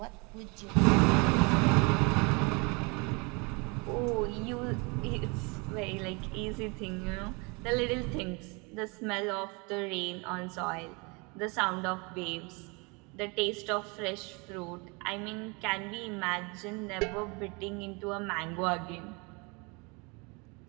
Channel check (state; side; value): quieter; left; 29.7 dB